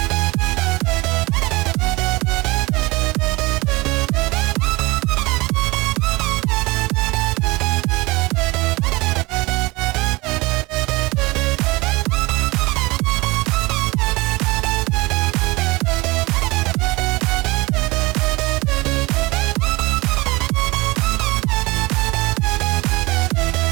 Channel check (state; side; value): quieter; left; 23.2 dB